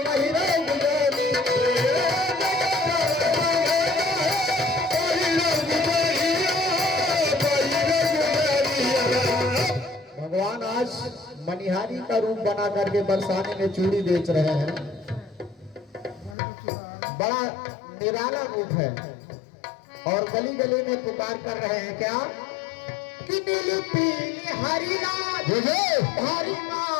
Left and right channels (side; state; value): right; drops out; at 16.4 s